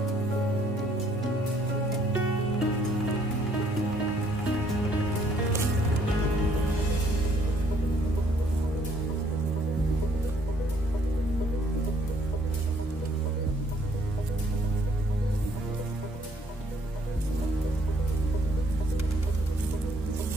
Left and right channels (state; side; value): normal; both; correlation 0.65